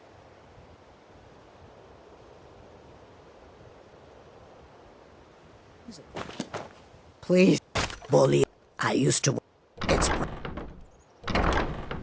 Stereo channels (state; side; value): identical; both; correlation 1.00